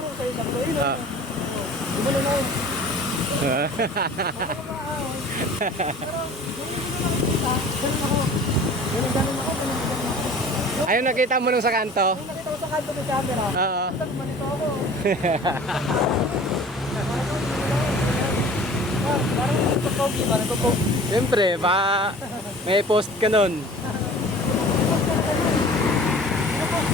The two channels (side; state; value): both; normal; correlation 0.44